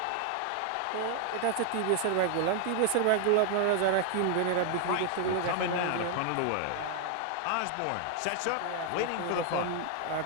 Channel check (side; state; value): both; different; correlation 0.00